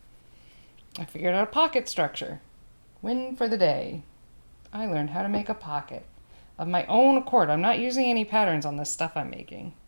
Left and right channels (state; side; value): inverted; both; correlation -1.00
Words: I figured out a pocket structure. Win for the day. I learned how to make a pocket of my own accord. I'm not using any patterns on this stuff I'm making.